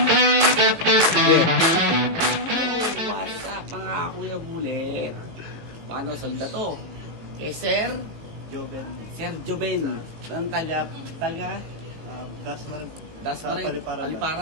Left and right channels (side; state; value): left; late; 18 ms